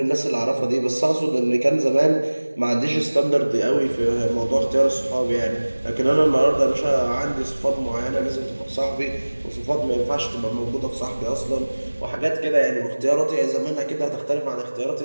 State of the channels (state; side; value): inverted; both; correlation -1.00